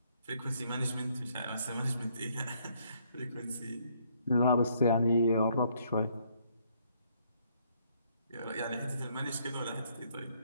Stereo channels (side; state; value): both; inverted; correlation -0.68